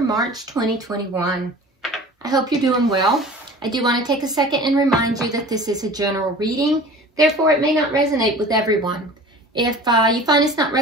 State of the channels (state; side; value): normal; both; correlation 0.41